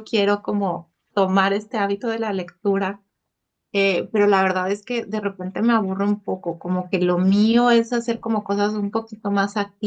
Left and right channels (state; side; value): identical; both; correlation 1.00